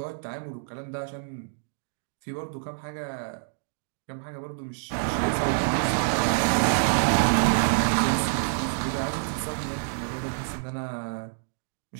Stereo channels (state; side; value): silent; left; digital silence